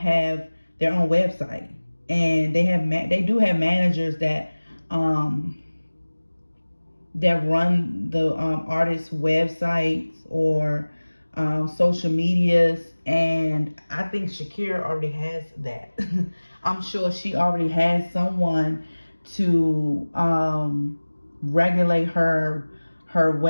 their own website, and they do have managers that run the artists' websites or social medias. And I think Shakira already has that. I'm sure she already has someone to regulate her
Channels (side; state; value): both; inverted; correlation -1.00